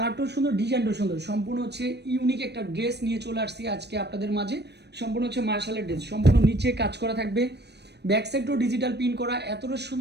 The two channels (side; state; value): left; late; 0.49 ms